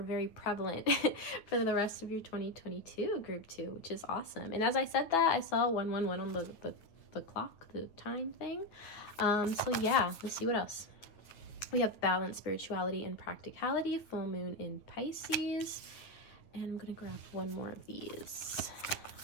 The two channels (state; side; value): late; right; 9.6 ms